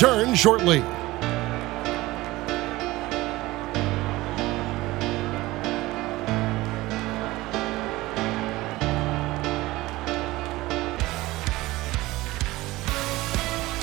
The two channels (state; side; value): quieter; left; 19.0 dB